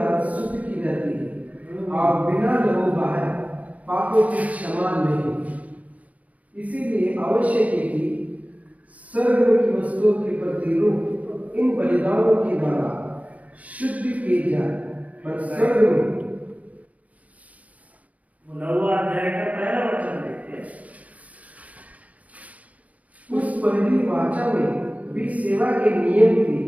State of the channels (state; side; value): late; left; 0.070 ms